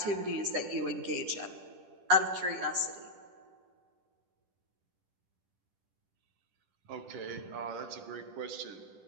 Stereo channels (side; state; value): left; late; 10 ms